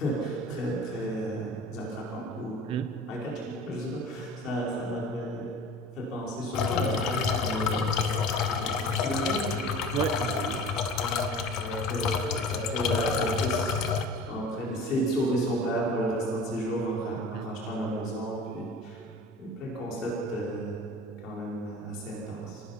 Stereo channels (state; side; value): normal; both; correlation 0.41